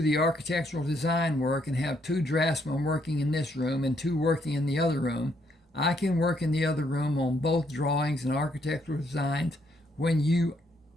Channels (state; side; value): normal; both; correlation 0.72